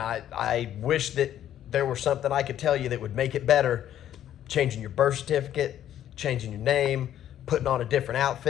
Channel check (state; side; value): quieter; right; 11.2 dB